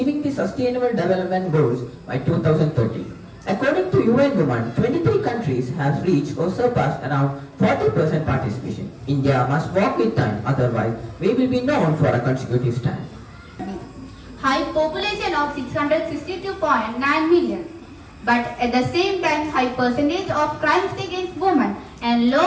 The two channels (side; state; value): both; identical; correlation 1.00